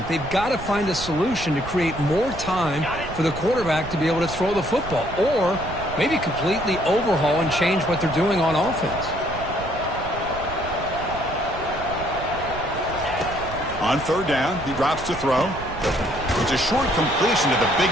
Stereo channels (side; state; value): right; noise; rumble, 11 dB below the sound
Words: They've got to find a solution to create more time for the quarterback to be able to throw the football, or maybe completely overhaul and change what they're doing on offense. On third down, he drops to throw. It's a short completion to the big